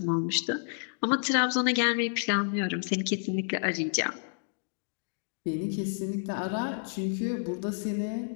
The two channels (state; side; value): silent; right; digital silence